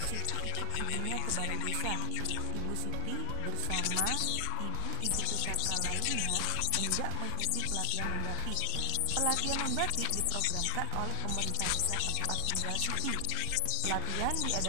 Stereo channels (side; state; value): both; different; correlation 0.00